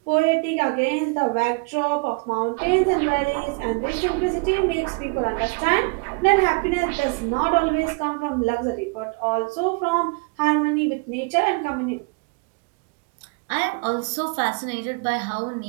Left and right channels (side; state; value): left; quieter; 31.1 dB